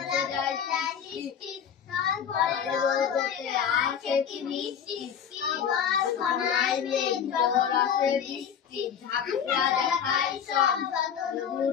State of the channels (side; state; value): right; quieter; 8.0 dB